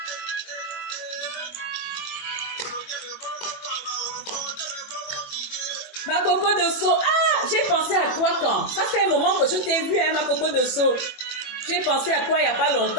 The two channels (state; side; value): late; right; 21 ms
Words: Ma coco de Sceaux. Ah, j'ai pensé à toi quand? Ça fait un moment que je t'ai vu, hein, ma coco de Sceaux. J'ai pensé à toi il n'y a pas